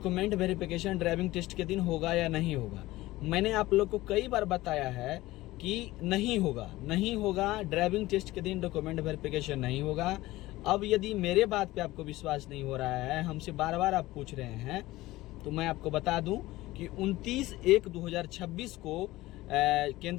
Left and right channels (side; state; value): right; quieter; 18.0 dB